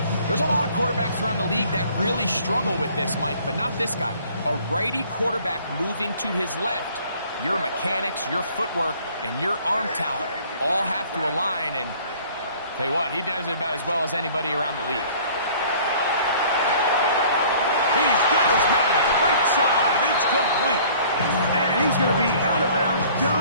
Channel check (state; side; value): inverted; both; correlation -0.53